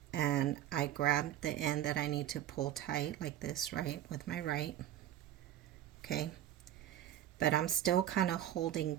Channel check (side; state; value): left; quieter; 12.1 dB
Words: And I grab the end that I need to pull tight like this, right, with my right. Okay. But I'm still kind of